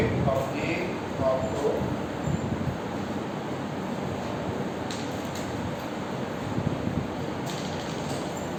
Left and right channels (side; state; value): both; identical; correlation 1.00